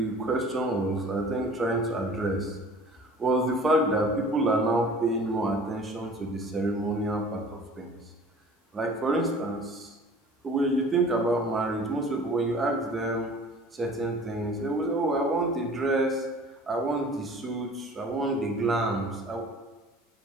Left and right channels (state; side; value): normal; both; correlation 0.46